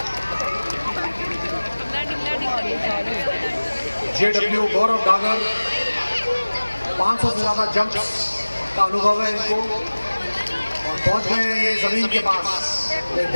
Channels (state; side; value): inverted; both; correlation -1.00